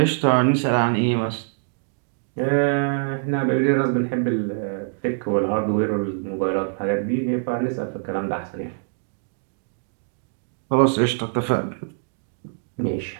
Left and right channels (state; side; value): silent; left; digital silence